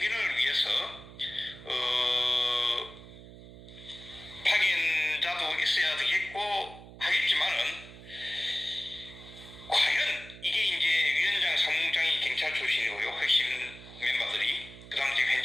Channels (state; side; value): noise; right; hum, 17 dB below the sound